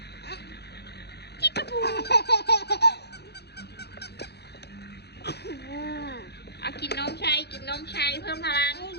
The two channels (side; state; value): right; late; 0.48 ms